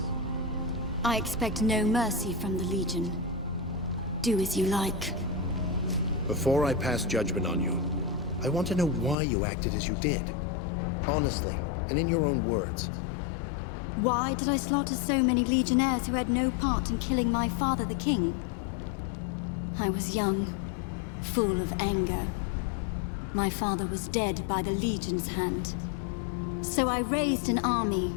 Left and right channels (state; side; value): drops out; right; at 9.2 s